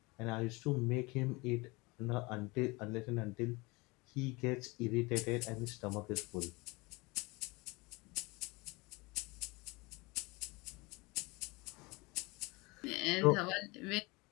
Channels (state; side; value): quieter; right; 25.0 dB